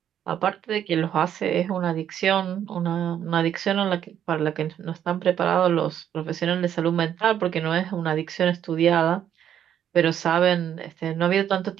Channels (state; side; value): quieter; left; 9.9 dB